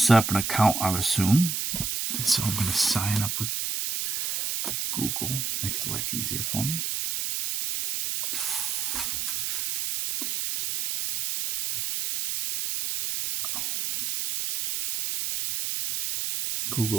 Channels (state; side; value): noise; right; hiss, 2 dB below the sound